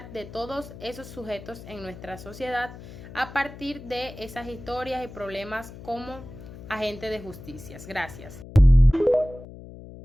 de todos esos sujetos en nuestra sociedad a partir de esas historias y problemas como agente de justicia. Gracias.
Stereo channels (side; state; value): left; noise; hum, 15 dB below the sound